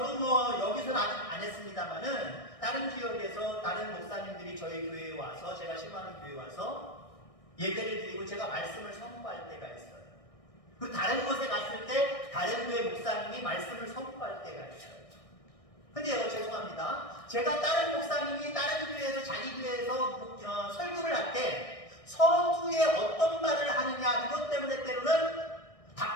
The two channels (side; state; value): right; late; 1.6 ms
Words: 뭐 여기서는 아직 안 했습니다만은 다른 지역에서 다른 목사님들이 저희 교회에 와서 제가 신방하는 교회에 와서 예배를 드리고 제가 말씀을 선포할 때가 있어요. 그리고 다른 곳에 갔을 때 다른 교회 목사님이 말씀을 선포할 때가 있어요. 근데요 죄송합니다. 제가 다른 목사님이 다른 교회에서 자기 교회에서 설교를 할 때 서두에 어떤 말을 하느냐 그것 때문에 때로는